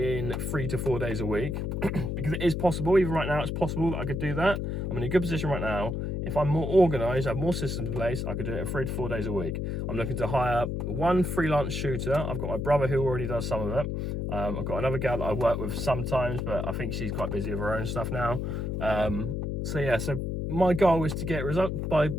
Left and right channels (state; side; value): noise; left; hum, 2 dB below the sound